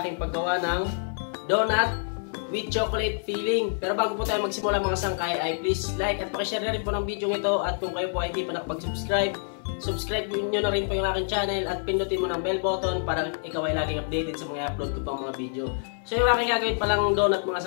paggawa ng donut with chocolate filling. Pero bago po tayo magsimula mga sangkay ay please like at pakishare na rin po ng video ito. At kung kayo po ay hindi pa nakapag-subscribe, subscribe nyo na rin po yung aking channel at pindutin mo ng bell button para ikaw ay laging updated sa mga upload ko pang mga video. So yung aking gagawin palang donut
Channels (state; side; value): silent; right; 60 dB below the other